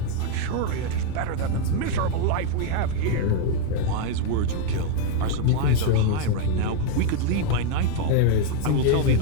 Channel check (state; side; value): different; both; correlation 0.00